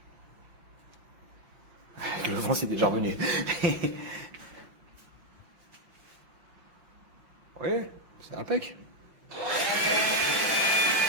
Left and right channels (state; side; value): late; left; 5.8 ms